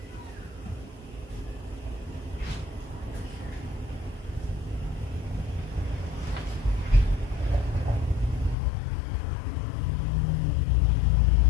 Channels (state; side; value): drops out; right; at 8.6 s